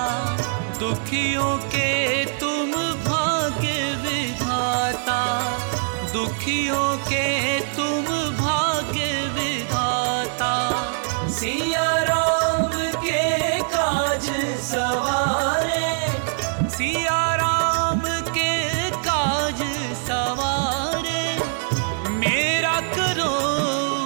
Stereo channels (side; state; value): left; silent; 61 dB below the other